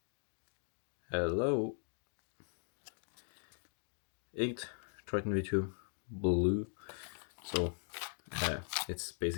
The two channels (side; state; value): right; silent; 51 dB below the other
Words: Hello. Inked Triton V2 blue. So it's